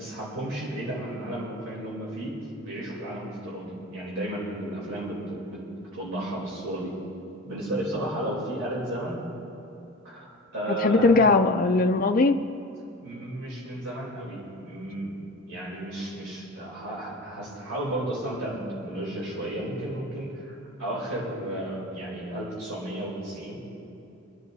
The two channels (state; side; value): normal; both; correlation 0.34